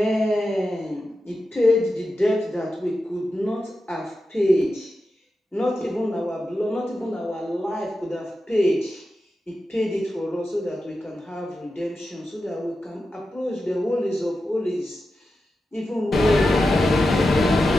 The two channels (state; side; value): normal; both; correlation 0.91